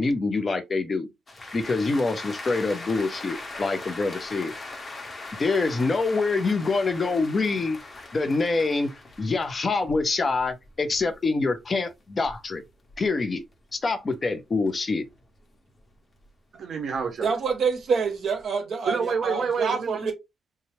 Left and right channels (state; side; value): normal; both; correlation 0.84